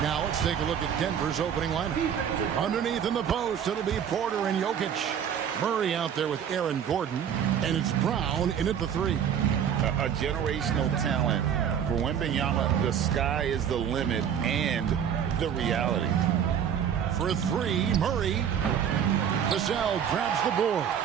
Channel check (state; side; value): quieter; left; 8.5 dB